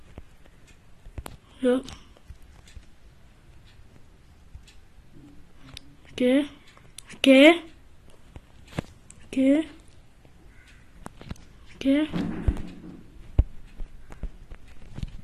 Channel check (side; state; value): both; identical; correlation 1.00